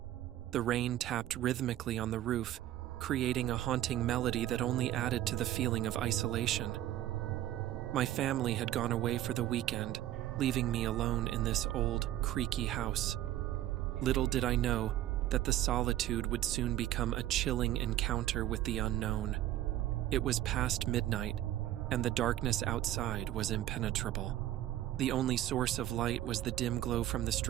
The rain tapped rhythmically on the roof, creating a haunting melody that only added to the feeling of isolation. My family had gone away for the weekend, leaving me alone in this old, creaky house. Little did I know that the solitude would soon become a chilling encounter with the unknown. It was past midnight, and the darkness outside was impenetrable. The only source of light was the dim glow from the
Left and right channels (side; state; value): left; quieter; 13.3 dB